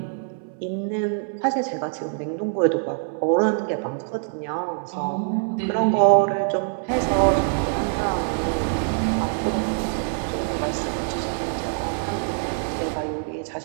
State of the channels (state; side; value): silent; left; 62 dB below the other